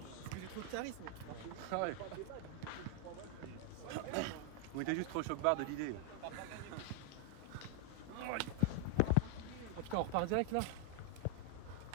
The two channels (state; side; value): different; both; correlation 0.00